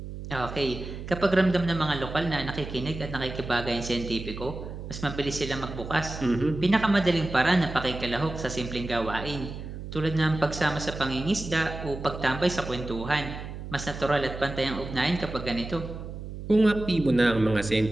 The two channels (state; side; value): noise; right; hum, 9 dB below the sound